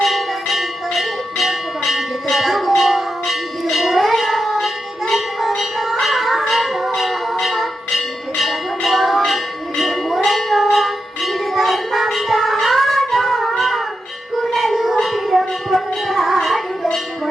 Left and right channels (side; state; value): both; normal; correlation 0.88